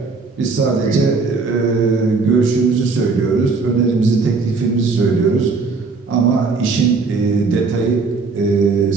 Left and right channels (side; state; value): left; quieter; 4.3 dB